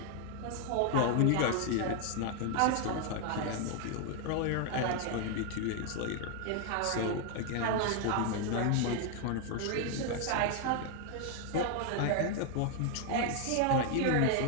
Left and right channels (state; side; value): different; both; correlation 0.00